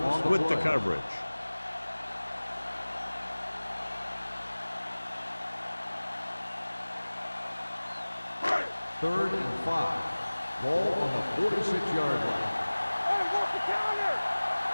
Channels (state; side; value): inverted; both; correlation -1.00